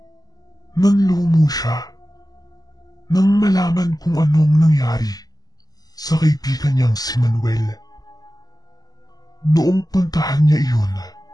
Nanlumo siya nang malaman kung anong nangyari sa kaibigan niyang si Manuel. Noong puntahan niya iyon,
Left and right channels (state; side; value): late; right; 0.18 ms